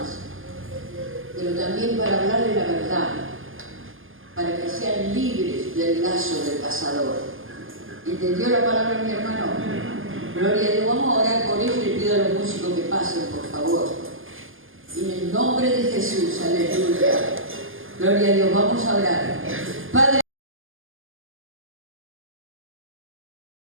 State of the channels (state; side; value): late; left; 0.59 ms